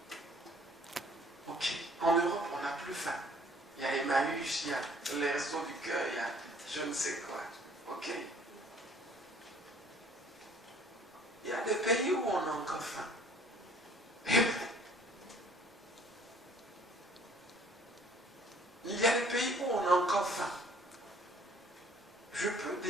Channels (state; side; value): normal; both; correlation 0.56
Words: Ok, en Europe, on n'a plus faim. Il y a Emmaüs, il y a les restos du cœur, il y a je ne sais quoi. Ok. Il y a des pays où on a encore faim. Amen. Il y a des pays où on a encore faim. Je peux